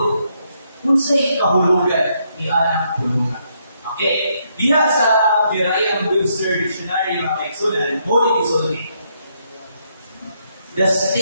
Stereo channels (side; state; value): both; inverted; correlation -0.75